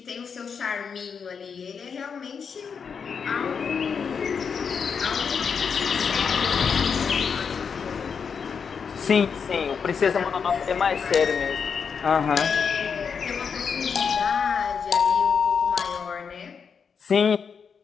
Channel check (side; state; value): right; quieter; 6.3 dB